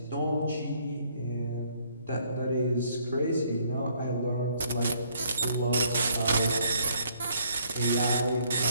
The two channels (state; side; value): inverted; both; correlation -0.66